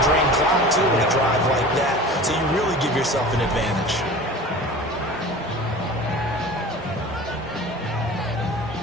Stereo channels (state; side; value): normal; both; correlation 0.38